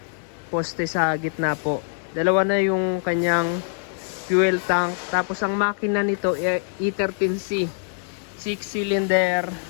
poste sa gitna po. Dalawa na yung kanyang fuel tank. Tapos ang makina nito E13C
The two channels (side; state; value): right; silent; digital silence